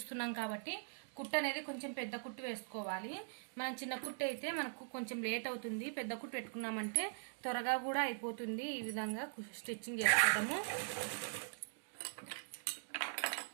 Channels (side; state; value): left; silent; digital silence